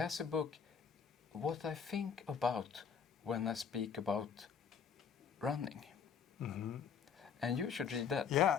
a book, What I Think About When I Speak About Running. Mm-hmm. And you should read that.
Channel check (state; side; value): quieter; right; 6.9 dB